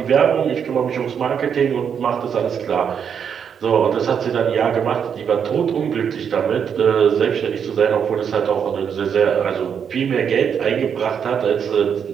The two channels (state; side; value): quieter; left; 7.5 dB